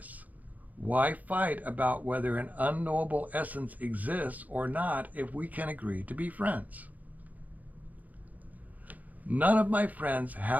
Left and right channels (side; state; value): left; late; 0.079 ms